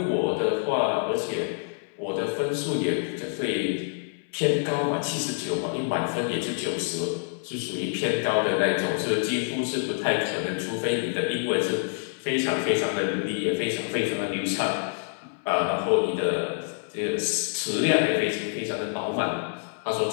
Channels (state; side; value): silent; right; 60 dB below the other